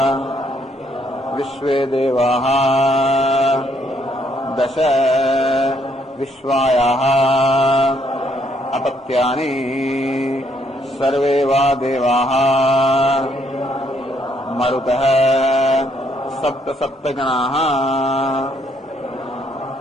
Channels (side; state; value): both; normal; correlation 0.71